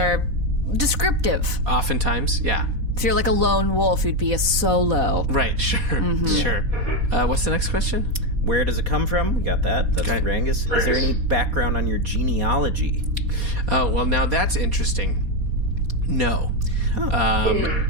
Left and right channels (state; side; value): late; left; 4.2 ms